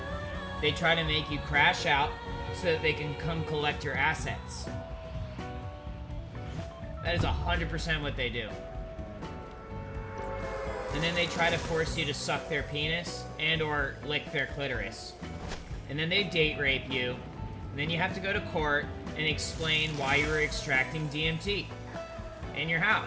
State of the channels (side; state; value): both; identical; correlation 1.00